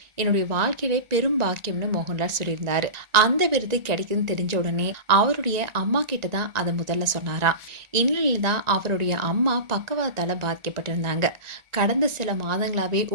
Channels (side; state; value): left; late; 1.9 ms